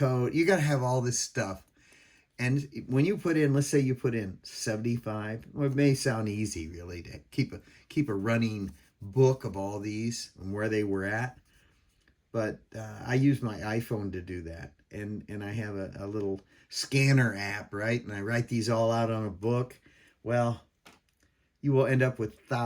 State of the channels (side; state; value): both; identical; correlation 1.00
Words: You got to have all this stuff. And when you put in, let's say you put in 75, well, it may sound easy really to keep a running book of all these and where they were at. But I use my iPhone to do that. And I have a little scanner app, right? And I write these all out on a book. Well, you will end up with